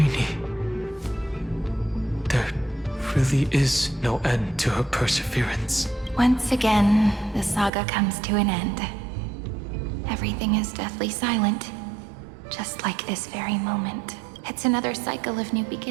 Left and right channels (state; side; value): drops out; left; at 7.7 s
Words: really is no end to her perseverance. Once again, the saga comes to an end. Everything is deathly silent, just like this very moment. It's another cycle of new